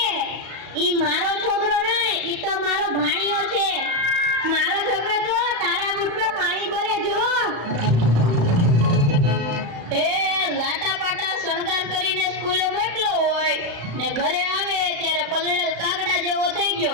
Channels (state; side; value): late; left; 35 ms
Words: ઈ મારો છોકરો નહીં, ઈ તો મારો ભાણિયો છે. મારો છોકરો તો તારા બૂટમાં પાણી ભરે જો. એ લાટા પાટા શણગાર કરીને સ્કૂલે મોકલો હોય ને ઘરે આવે ત્યારે પલળેલ કાગડા જેવો થઈ